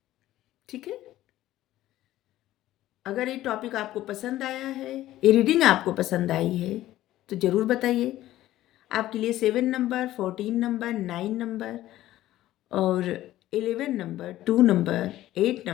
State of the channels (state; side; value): quieter; right; 14.6 dB